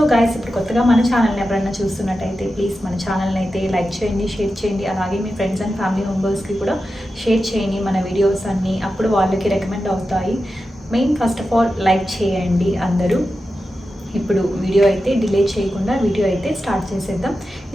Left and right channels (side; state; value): both; normal; correlation 0.91